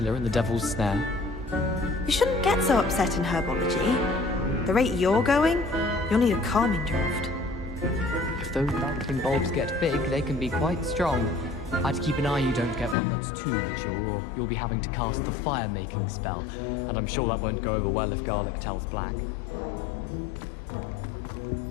and the devil's snare. You shouldn't get so upset in herbology. The rate you're going, you'll need a calming draught. If those bouncing bulbs get big, they can be quite strong. I'd keep an eye you don't get one that's too mature, or you'll be having to cast the fire-making spell, and I'm sure that won't go over well if garlic tells black.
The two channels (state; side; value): drops out; right; at 13.0 s